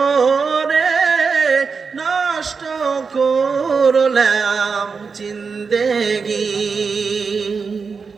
নষ্ট করলাম জিন্দেগি।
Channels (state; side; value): quieter; left; 5.2 dB